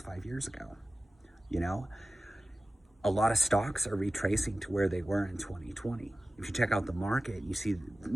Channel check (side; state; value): both; normal; correlation 0.96